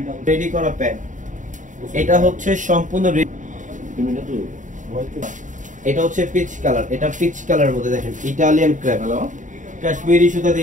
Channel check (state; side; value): late; left; 0.37 ms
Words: রেডি করা প্যান। এটা হচ্ছে সম্পূর্ণ, এটা হচ্ছে পিচ কালার, এটা পিচ কালারের মধ্যে দেখেন ইটালিয়ান ক্র্যাপ, কাশ্মীরি সুতা